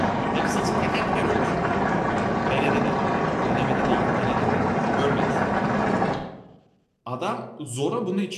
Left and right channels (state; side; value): identical; both; correlation 1.00